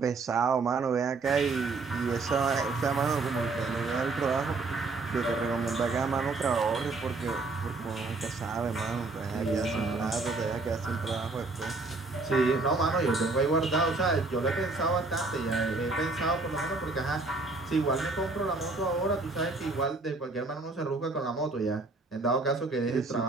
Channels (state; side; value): quieter; left; 3.6 dB